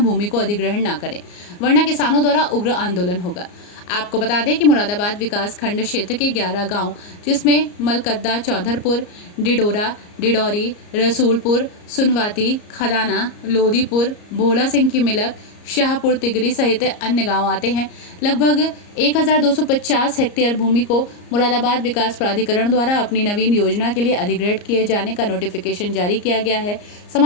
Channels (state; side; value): late; right; 34 ms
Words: को अधिग्रहण न करें, वरना किसानों द्वारा उग्र आंदोलन होगा। आपको बता दें कि मुरादाबाद विकास खंड क्षेत्र के 11 गांव, जिसमें मलकद्दा, चौधरपुर, डिडोरा, डिडौरी, रसूलपुर, सुनवाती, खदाना, लोधीपुर, भोला सिंह की मिलक, शाहपुर तिगरी सहित अन्य गांव आते हैं। लगभग 1250 हेक्टेयर भूमि को मुरादाबाद विकास प्राधिकरण द्वारा अपनी नवीन योजना के लिए अधिग्रहण किए जाने का नोटिफिकेशन जारी किया गया है।